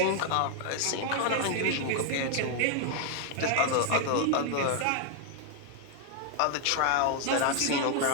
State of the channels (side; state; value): both; different; correlation 0.00